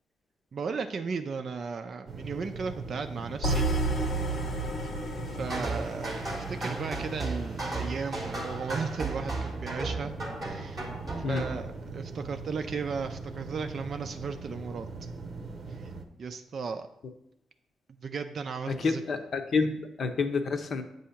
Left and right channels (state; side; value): normal; both; correlation 0.65